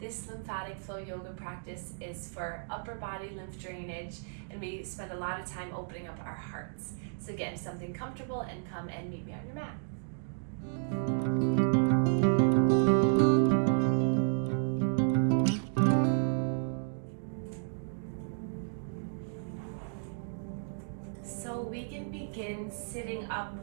lymphatic flow yoga practice is for upper body lymph drainage, and we spend a lot of time opening up our hearts. So get into something comfortable and come and meet me on your mat. So we can begin sitting up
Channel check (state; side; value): silent; left; digital silence